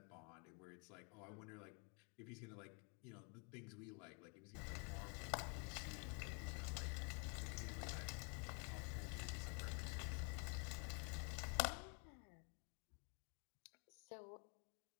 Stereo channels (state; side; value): quieter; right; 35.0 dB